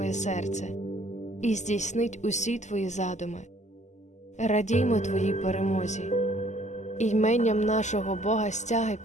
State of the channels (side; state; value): right; late; 0.34 ms